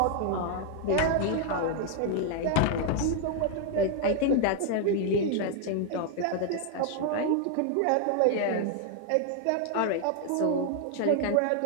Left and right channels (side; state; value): both; different; correlation 0.00